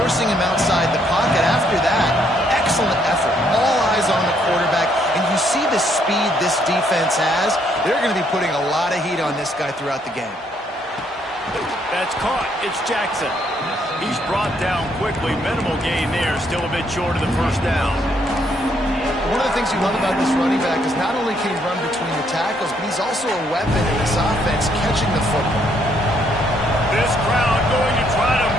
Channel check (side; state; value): both; normal; correlation 0.70